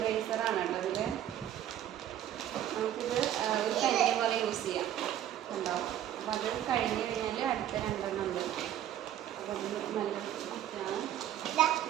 കേട്ടോ ഇതിൽ. നമുക്കിത് ഒരു പെൻസിൽ പോലെ യൂസ് ചെയ്യാം ഉണ്ടാവും. അപ്പം അത് കഴിഞ്ഞ് കഴിഞ്ഞാൽ അടുത്ത രണ്ടെണ്ണം ഉണ്ട്. അപ്പം അത് നല്ല ബുക്കാണ്.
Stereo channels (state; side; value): quieter; left; 11.5 dB